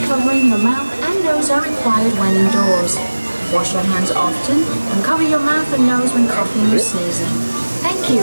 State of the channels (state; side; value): inverted; both; correlation -1.00